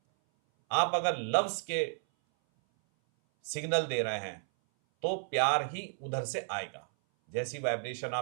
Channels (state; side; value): silent; left; 56 dB below the other